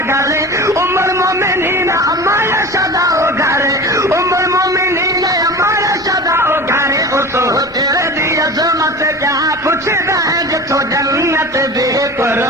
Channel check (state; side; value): normal; both; correlation 0.34